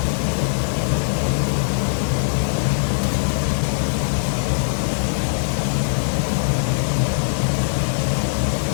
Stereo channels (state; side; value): silent; right; 59 dB below the other